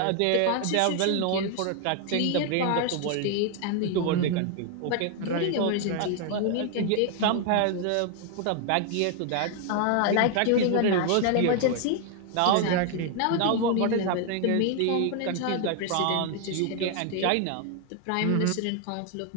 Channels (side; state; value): both; different; correlation 0.00